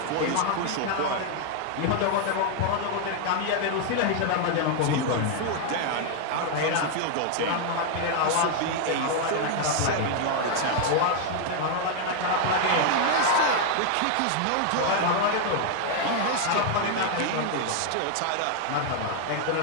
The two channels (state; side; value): different; both; correlation 0.00